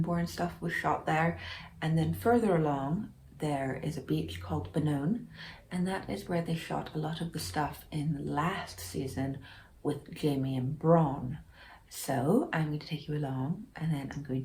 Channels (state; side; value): identical; both; correlation 1.00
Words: stuff was shot there. And then further along there is a beach called Benone, and that is where they shot a lot of the stuff in the last season with Jaime and Bronn. So I'm going to take you along, and then I'm